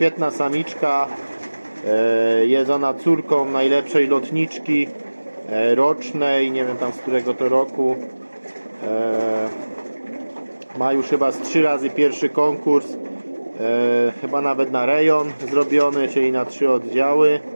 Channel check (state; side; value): inverted; both; correlation -1.00